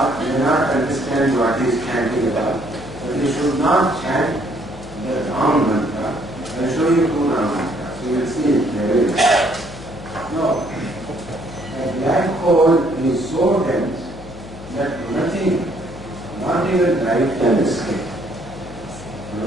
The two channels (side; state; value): left; noise; hum, 15 dB below the sound